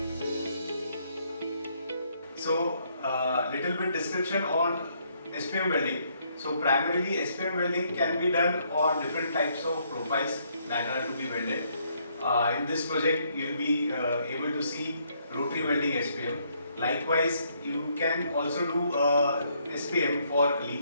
So little bit description on SPM welding. So primarily SPM welding can be done on different types of profiles that are to be welded. In this project you will be able to see rotary welding SPM. Likewise, you can also do SPM for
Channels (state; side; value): inverted; both; correlation -0.71